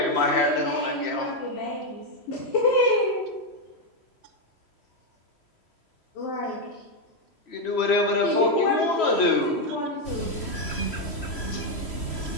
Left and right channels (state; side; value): late; right; 3.1 ms